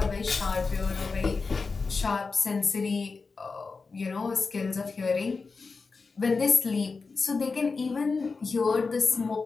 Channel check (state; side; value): quieter; right; 4.4 dB